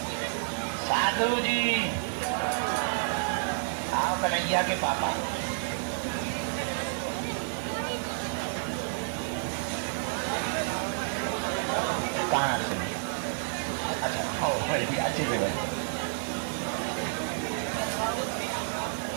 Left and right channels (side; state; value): left; silent; digital silence